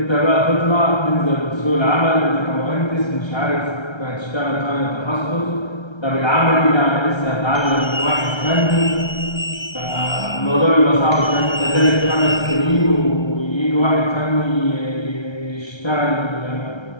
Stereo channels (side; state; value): right; late; 1.3 ms